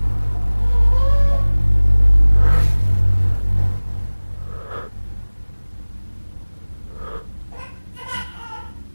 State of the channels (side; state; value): both; inverted; correlation -1.00